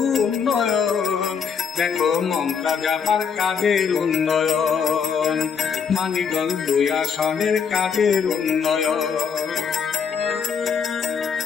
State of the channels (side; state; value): right; quieter; 6.5 dB